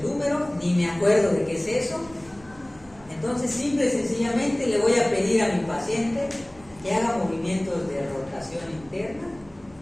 húmero, ni me acuerdo de qué es eso. Entonces, simple y sencillamente le voy a pedir a mi paciente que haga movimientos de rotación interna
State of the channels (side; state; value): right; noise; rumble, 25 dB below the sound